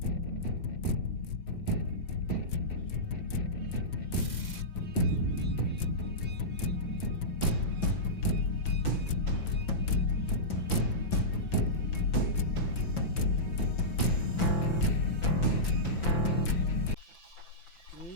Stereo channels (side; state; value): right; late; 5.9 ms